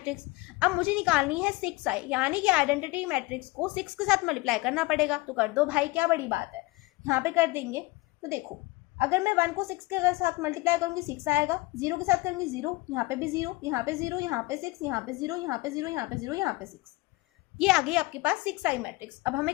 अब मुझे निकालनी है 6i, यानी कि आइडेंटिटी मैट्रिक्स को 6 के साथ मल्टीप्लाई करना पड़ेगा। तो कर दो भाई, क्या बड़ी बात है, यहाँ पे कर देंगे। तो देखो अगर मैं 1 को 6 के साथ मल्टीप्लाई करूंगी 6 आएगा, 0 के साथ करूंगी 0, यहाँ पे भी 0, यहाँ पे 0, यहाँ पे 6, यहाँ पे 0, यहाँ पे 0, यहाँ पे 0, यहाँ पे 6। ये आ गई आपके पास 6i मैट्रिक्स। अब हमें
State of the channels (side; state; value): right; quieter; 22.4 dB